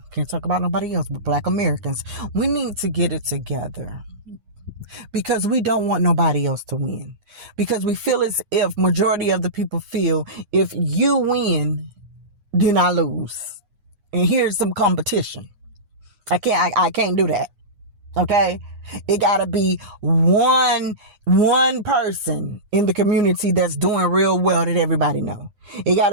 can't talk about nobody else but Black Americans. We need to get it together, because we don't want nobody else to win. Because we feel as if majority of the people feel if you win, then I lose. And here's some competition. I can't do that. Okay, it gotta be one person in the community that's doing real well that everybody know. It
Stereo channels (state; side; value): late; left; 9.6 ms